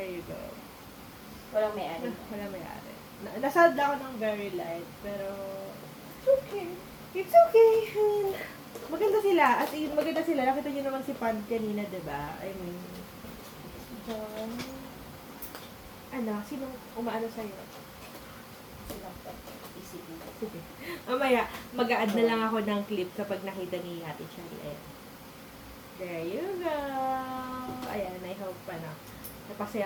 you go. Walang may-ari. Wala may-ari. Nasad ako ng very light, pero it's okay. It's okay. I mean, maganda sila. As in, maganda sila. Nakita nyo naman si Pand kanina, diba? I mean, Don. ano, sinong umaano sa'yo? Silang isipin. Sige. Mamaya, mag-a-add na lang ako ng clip kapag nakita ni Ate Charlie. Ayan. There you go. Ayan, I hope pa na napasaya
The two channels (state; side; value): identical; both; correlation 1.00